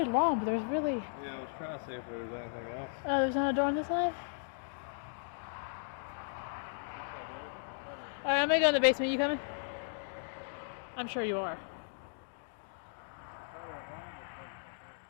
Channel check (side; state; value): right; silent; digital silence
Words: long, but there's really... Yeah, I was trying to see if there was anything else. Oh, there's not a door on this side? Alright, I'm gonna go in the basement. You coming? I'm sure you are.